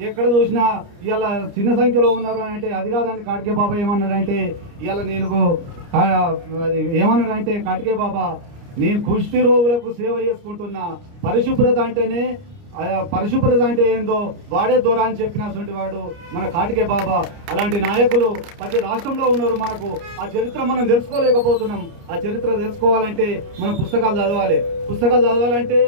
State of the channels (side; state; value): left; late; 29 ms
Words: ఎక్కడ చూసినా ఇవాళ చిన్న సంఖ్యలో ఉన్నారు అని అంటే అది కాదండి. కాటికే బాబా ఏమన్నాడంటే ఇవాళ ఏమన్నాడంటే కాటికే బాబా నేను కుష్టి రోగులకు సేవ చేసుకుంటున్నా, పరిశుభ్రత అంటేనే పరిశుభ్రత అంటే ఏందో వాడే దూరా అని చెప్పినటువంటి వాడు మన కాటికే బాబా. అలాంటి నాయకులు ప్రతి రాష్ట్రంలో ఉన్నారు. మనకు ఆ చరిత్ర మనం తెలుసుకోలేకపోతున్నాం. ఆ చరిత్ర తెలుసుకోవాలంటే మనం పుస్తకాలు